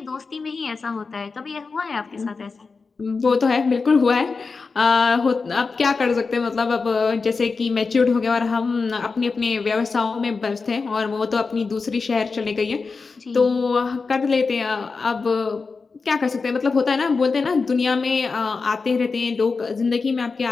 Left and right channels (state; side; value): quieter; right; 4.5 dB